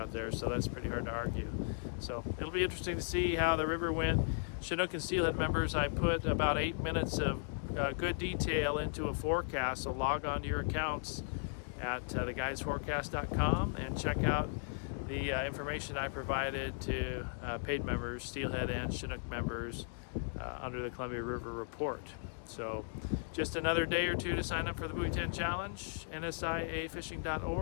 there, so that's pretty hard to argue. So it'll be interesting to see how the river went. Chinook and Steelhead members, I put about 8 minutes of good detail into a forecast, so log on to your accounts at theguidesforecast.com and check out the information I provided to paid members, Steelhead and Chinook members, under the Columbia River Report. So just another day or two to sign up for the Buoy 10 Challenge,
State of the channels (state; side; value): silent; right; digital silence